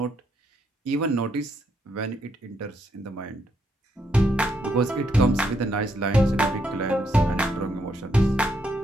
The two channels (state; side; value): normal; both; correlation 0.76